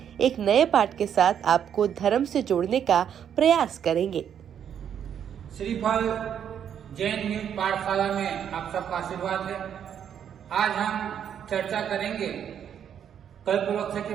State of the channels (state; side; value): quieter; left; 8.8 dB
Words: एक नए पाठ के साथ आपको धर्म से जोड़ने का प्रयास करेंगे। श्रीफल जैन न्यूज पाठशाला में आप सबका आशीर्वाद है। आज हम चर्चा करेंगे कल्पवृक्ष